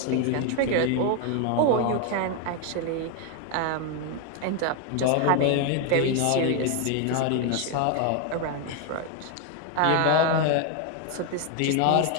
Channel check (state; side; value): different; both; correlation 0.01